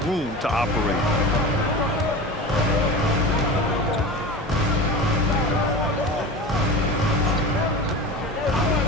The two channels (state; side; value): normal; both; correlation 0.31